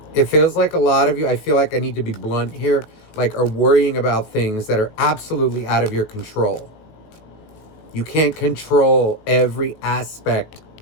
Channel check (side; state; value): right; late; 19 ms